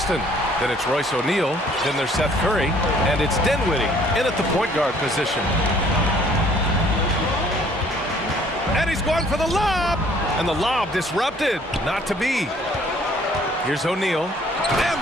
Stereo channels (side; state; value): both; normal; correlation 0.59